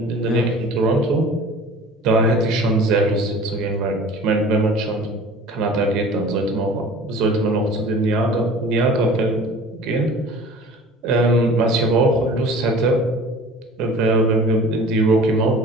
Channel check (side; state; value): both; normal; correlation 0.44